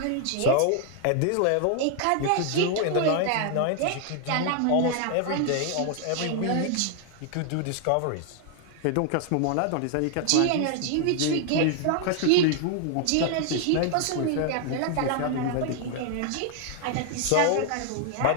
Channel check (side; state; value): both; different; correlation 0.00